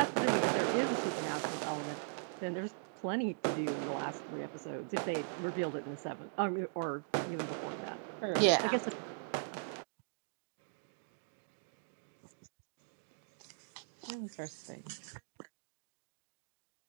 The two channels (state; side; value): silent; left; digital silence